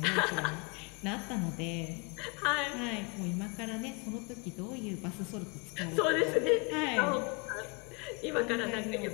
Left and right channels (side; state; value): right; quieter; 31.3 dB